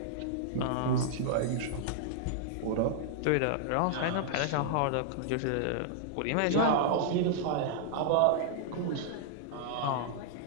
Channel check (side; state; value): both; different; correlation -0.01